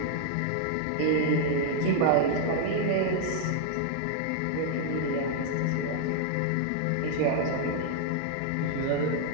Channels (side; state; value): both; different; correlation 0.00